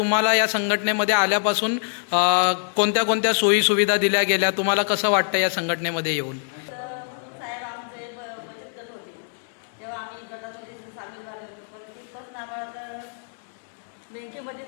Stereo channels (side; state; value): right; silent; digital silence